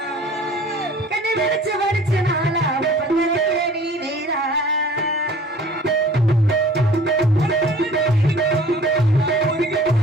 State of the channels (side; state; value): both; normal; correlation 0.48